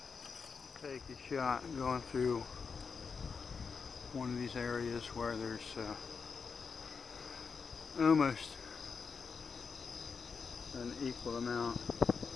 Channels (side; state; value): right; quieter; 5.4 dB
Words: Take a shot going through one of these areas where there's almost an equal amount